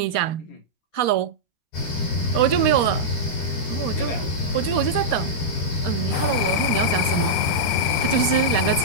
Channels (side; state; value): right; late; 13 ms